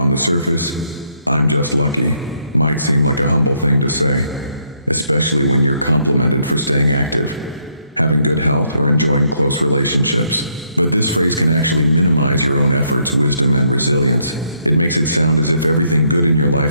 the surface, "I'm just lucky" might seem like a humble thing to say, especially when you're complimented for staying active, having good health, or enjoying close relationships. But this phrase can actually minimize your own efforts, wisdom, and resilience. It makes it sound as if everything good in your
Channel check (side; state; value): both; inverted; correlation -0.72